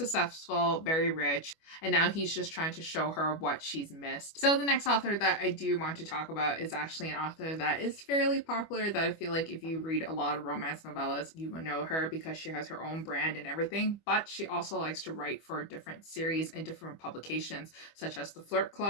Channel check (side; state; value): right; late; 25 ms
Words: very rich, and now he's just trying to show her what she's missed. So the next author that I do want to talk about is actually an author that is fairly popular, that I feel like if you read a lot of romance novellas, you will know her because she has her own brand and everything, but she also likes to write for different series and different publications, such as the Flirt